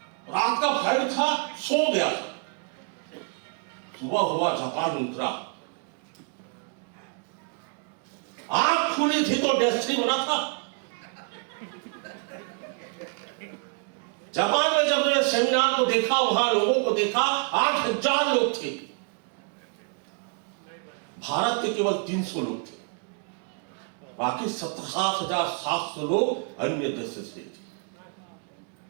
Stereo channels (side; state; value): left; quieter; 39.3 dB